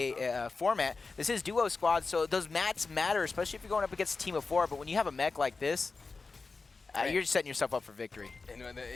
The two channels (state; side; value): quieter; right; 4.2 dB